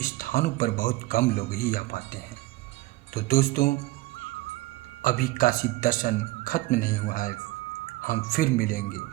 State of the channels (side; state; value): left; quieter; 19.1 dB